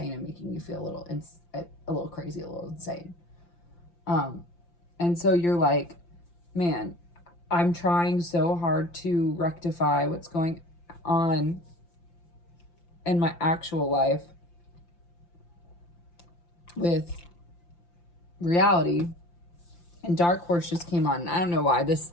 and making you feel a little crazy, a little insane. And so you're like, man, I'm trying so hard to rectify what's going on in my actual life with reality. And Dark Horse just came on. I don't know why this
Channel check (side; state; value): right; late; 5.8 ms